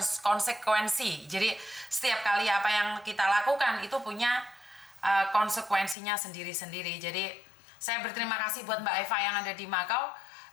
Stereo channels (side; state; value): right; drops out; at 6.0 s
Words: konsekuensi. Jadi setiap kali apa yang kita lakukan itu punya konsekuensinya sendiri-sendiri. Jadi saya berterima kasih buat Mbak Eva yang ada di Makau